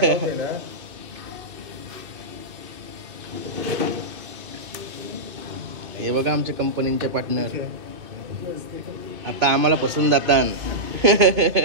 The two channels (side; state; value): left; late; 2.8 ms